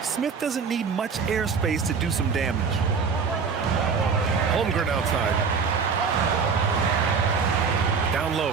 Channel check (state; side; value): quieter; left; 5.6 dB